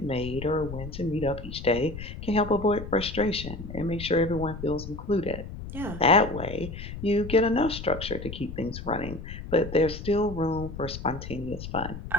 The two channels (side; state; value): left; noise; rumble, 10 dB below the sound